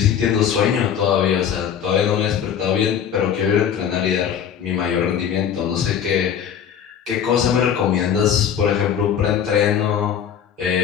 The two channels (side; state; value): right; quieter; 8.6 dB